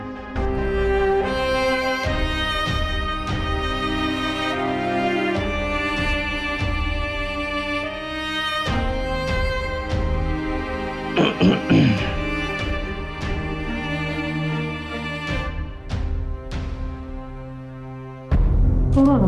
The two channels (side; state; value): both; identical; correlation 1.00